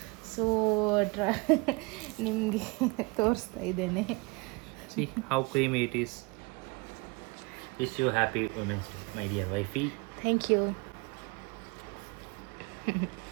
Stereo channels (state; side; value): quieter; left; 28.1 dB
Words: ಸೊ ನಿಮಗೆ ತೋರಿಸ್ತಾ ಇದ್ದೇನೆ. See how creamy it is. Wish you happy Women's Day, my dear wifey. Thank you.